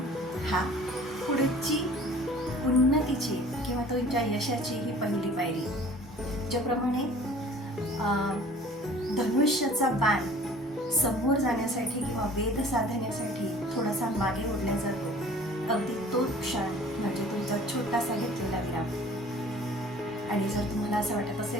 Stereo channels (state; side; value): normal; both; correlation 0.49